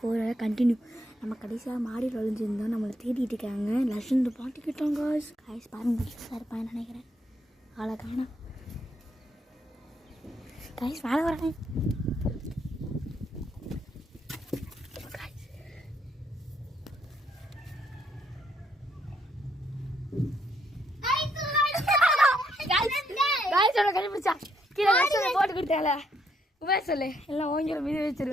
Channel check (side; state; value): both; normal; correlation 0.74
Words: continue. நம்ம கடைசியாக மாடியில் ஒழிஞ்சிருந்தோம், நம்மளை தேடிட்டு இருக்காங்க. லட்சம் பாட்டுக்கிட்டோம் கைஸ். கைஸ் பாருங்க, சார் இருப்பான்னு நினைக்கிறேன். ஆளை காணோம் கைஸ். மேலே வரேன் கண்டுபிடிச்சா கீழே லட்சம் போட்டு கொடுத்தால உபேஷ் சொல்லு. எல்லாம் ஓங்கிற மீது